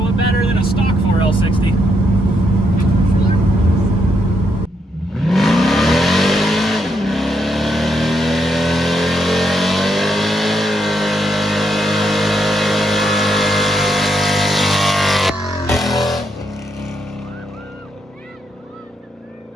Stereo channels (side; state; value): both; normal; correlation 0.78